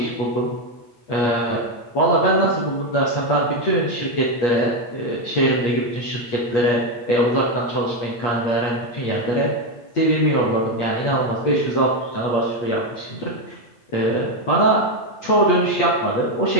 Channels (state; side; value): late; right; 8.5 ms